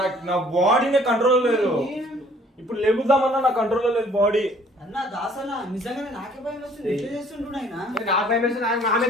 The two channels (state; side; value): normal; both; correlation 0.57